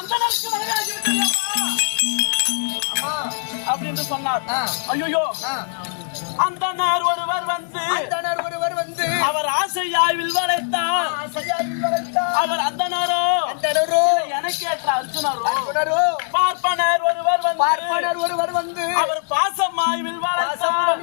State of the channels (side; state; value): right; silent; digital silence